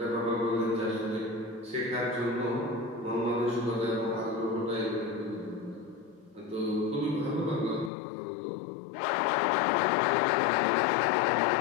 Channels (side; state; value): right; drops out; at 7.9 s